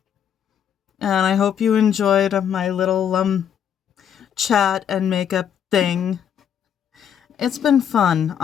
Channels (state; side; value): quieter; right; 8.8 dB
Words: And I hope you enjoyed my little chat and makeup thing. It's been fun.